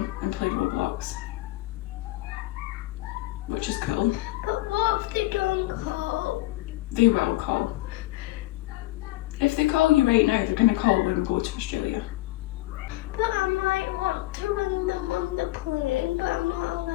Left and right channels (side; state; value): right; quieter; 18.2 dB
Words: and play Roblox, which is cool. But what if they don't call? They will call. If they call you right now, they're going to call when we go to Australia. But I might want to ring them on the plane, but I'm not